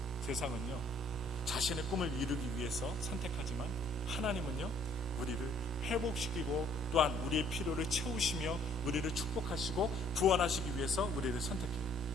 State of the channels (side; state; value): both; normal; correlation 0.62